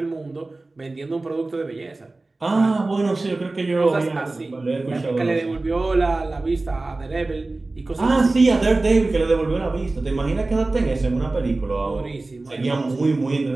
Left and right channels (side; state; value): left; quieter; 3.2 dB